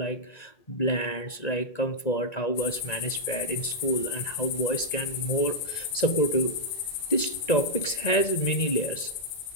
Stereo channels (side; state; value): right; late; 1.9 ms